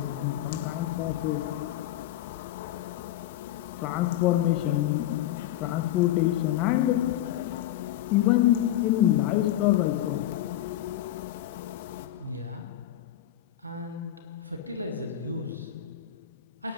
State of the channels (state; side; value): quieter; right; 12.9 dB